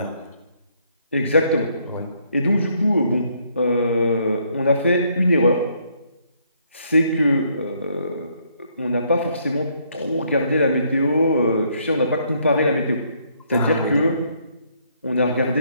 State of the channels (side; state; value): both; inverted; correlation -0.70